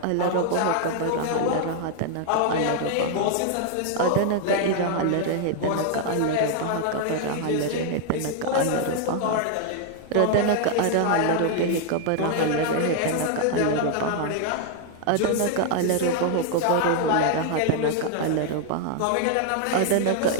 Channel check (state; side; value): different; both; correlation 0.00